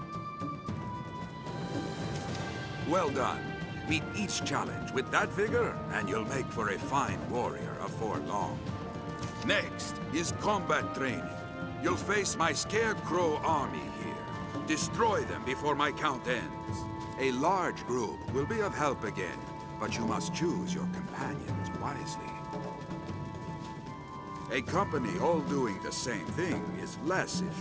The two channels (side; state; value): both; identical; correlation 1.00